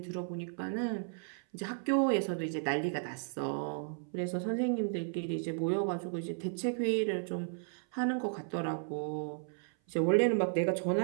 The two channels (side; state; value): left; silent; 55 dB below the other